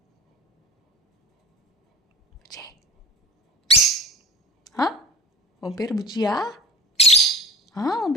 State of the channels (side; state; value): both; normal; correlation 0.35